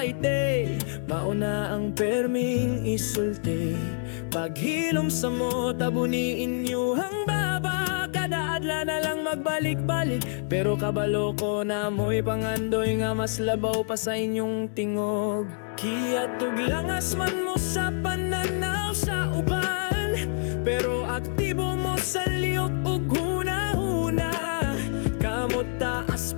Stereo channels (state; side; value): silent; right; digital silence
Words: mauna ang perming isulti, paghilom sa mo, tabuniin niyo ang baba. Kada adla na lang magbalik-balik, pero kabalo ko na mo'y pangandoy nga mas labaw pa sa inyong tingog. Kiyatog langas man mo sa pananaw sa uban, pero aktibo mo sa liyok ug huna-huna. Kamot taas